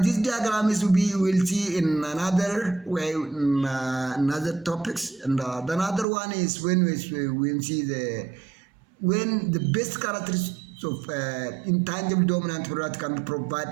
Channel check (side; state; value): left; drops out; at 6.1 s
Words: This diagram is we will see in another way in another topics, and the another one is when we see when the best characteristics So intangible dominant product can